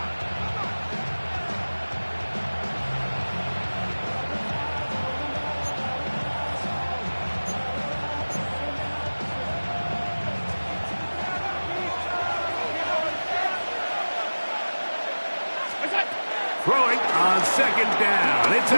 Throwing on 2nd down. It's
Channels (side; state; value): both; inverted; correlation -1.00